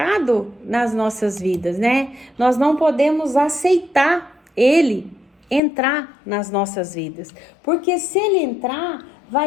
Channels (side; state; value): right; drops out; at 5.6 s